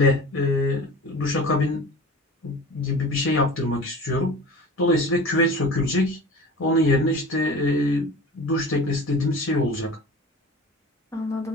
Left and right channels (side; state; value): both; normal; correlation 0.37